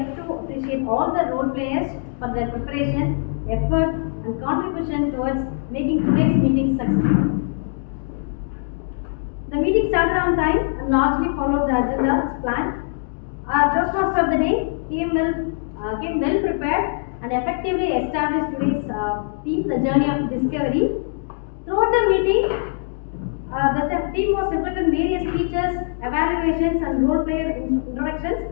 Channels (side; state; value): right; silent; digital silence